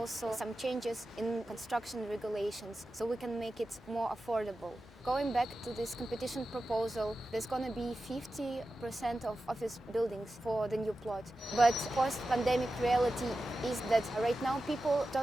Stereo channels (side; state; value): both; normal; correlation 0.93